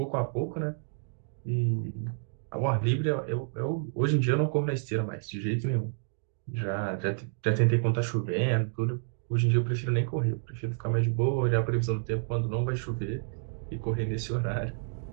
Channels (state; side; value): silent; left; digital silence